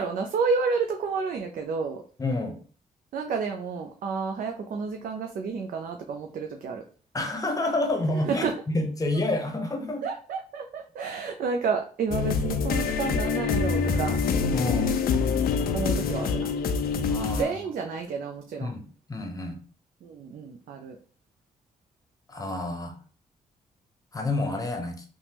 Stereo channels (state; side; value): normal; both; correlation 0.45